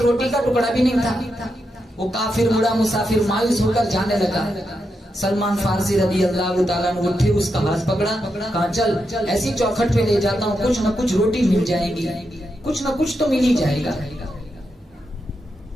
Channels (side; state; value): both; normal; correlation 0.85